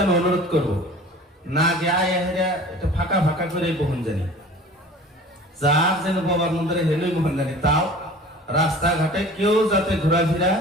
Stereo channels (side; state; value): both; normal; correlation 0.43